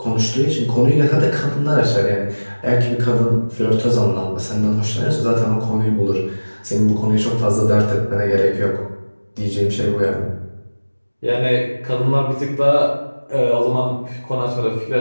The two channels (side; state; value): both; inverted; correlation -1.00